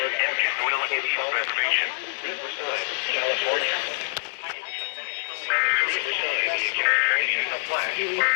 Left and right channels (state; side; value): silent; right; digital silence